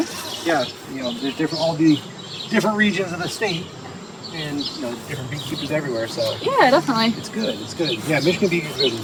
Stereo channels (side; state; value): both; identical; correlation 1.00